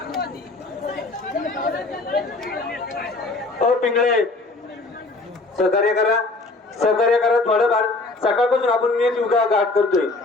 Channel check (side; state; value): right; quieter; 3.3 dB